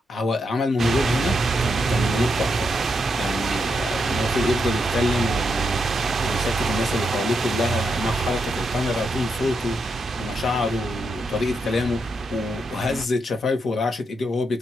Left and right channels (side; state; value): both; normal; correlation 0.82